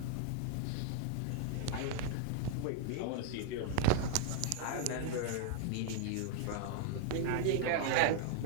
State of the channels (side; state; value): both; different; correlation 0.00